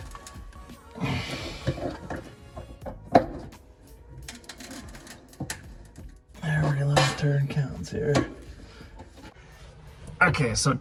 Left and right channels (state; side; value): identical; both; correlation 1.00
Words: Every little turn counts here. Okay, so